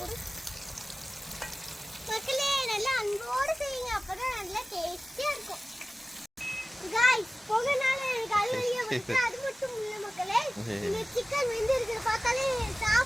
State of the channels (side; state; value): both; normal; correlation 0.97